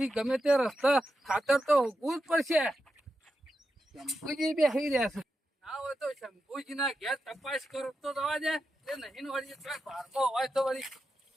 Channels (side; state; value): both; normal; correlation 0.88